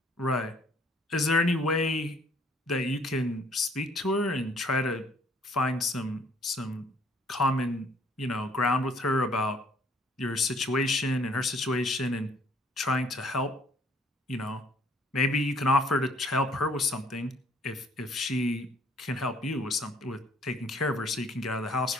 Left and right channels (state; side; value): normal; both; correlation 0.61